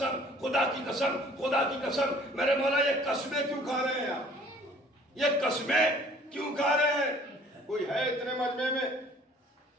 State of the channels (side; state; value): both; normal; correlation 0.53